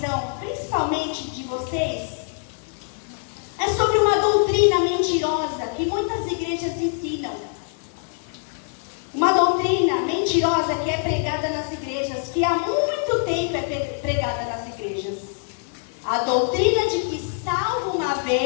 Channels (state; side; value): silent; right; 63 dB below the other